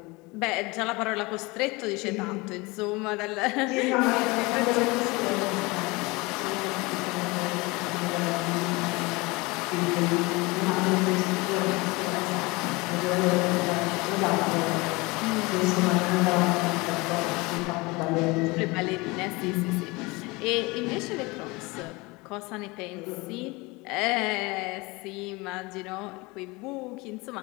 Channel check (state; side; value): quieter; right; 24.4 dB